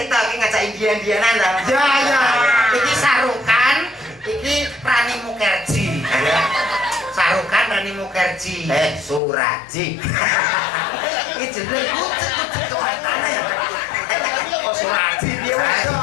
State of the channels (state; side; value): drops out; right; at 9.2 s